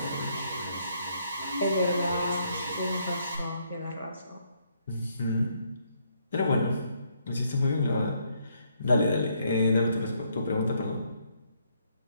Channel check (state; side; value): inverted; both; correlation -0.72